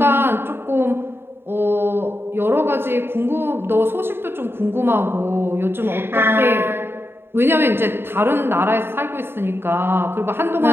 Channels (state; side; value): late; left; 0.11 ms